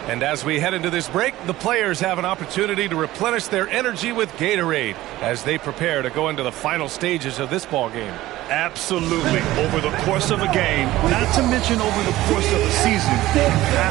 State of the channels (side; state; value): left; quieter; 16.3 dB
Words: And as we head into this break, the players have an opportunity to replenish their energy with Gatorade as they prepare to go into the final stages of this ball game. Absolutely. Over the course of a game, not to mention over the course of a season, you